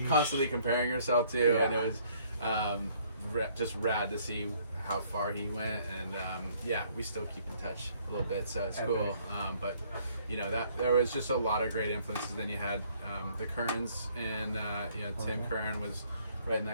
constantly comparing yourself to, and it was just rad to see how far he went, and we still keep in touch a little bit, so it's cool. But that there was just a lot of great influences. Then you had the Kerns, and Tim Kern was right in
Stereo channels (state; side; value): inverted; both; correlation -0.62